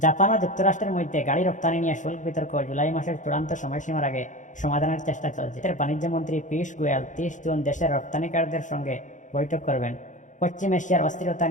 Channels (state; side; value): late; right; 0.36 ms